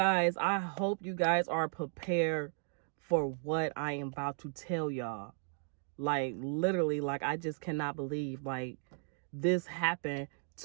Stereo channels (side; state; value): left; silent; 54 dB below the other